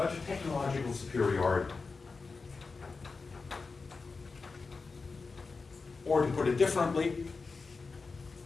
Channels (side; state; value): right; quieter; 4.4 dB